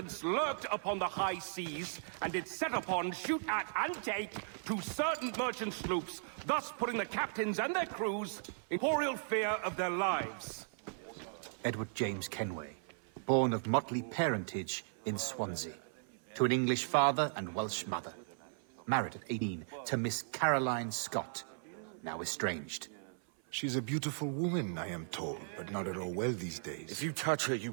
lurked upon the high seas and did set upon, shoot at, and take 2 certain merchant sloops, thus putting the captains and their crews in horrible fear of their lives. Edward James Kenway, born of motley parentage in Swansea, to an English father and Welsh mother. Married at 18 to Miss Caroline Scott, now estranged. She's a beautiful woman, I am told, but not at all well these days. If you touch her, you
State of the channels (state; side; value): silent; left; 53 dB below the other